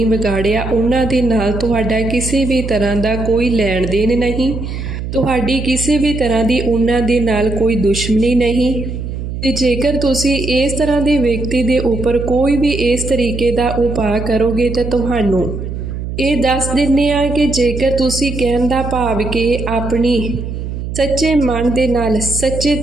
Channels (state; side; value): noise; right; hum, 6 dB below the sound